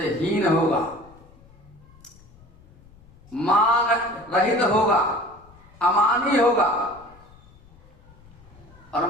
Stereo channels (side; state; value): left; noise; rumble, 25 dB below the sound